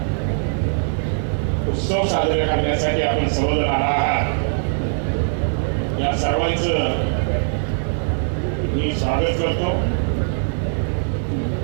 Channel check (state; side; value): silent; left; digital silence